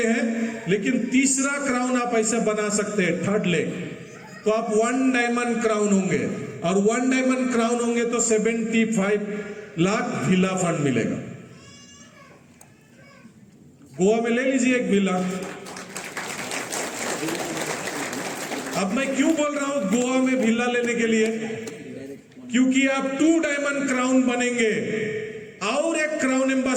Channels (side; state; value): both; identical; correlation 1.00